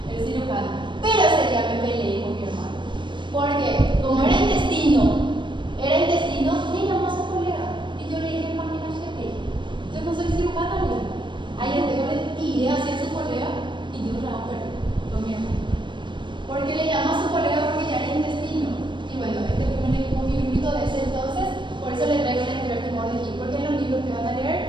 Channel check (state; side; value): late; left; 0.23 ms